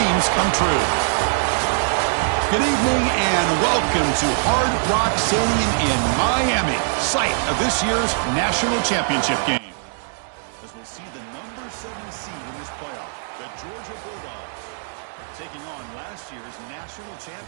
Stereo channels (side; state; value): left; silent; digital silence